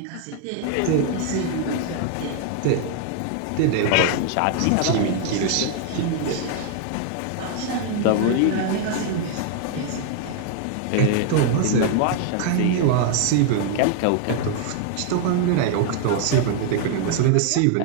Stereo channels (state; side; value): different; both; correlation 0.00